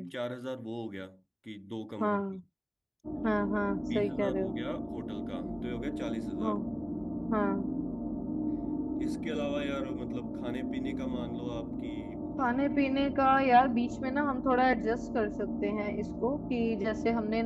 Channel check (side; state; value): both; identical; correlation 1.00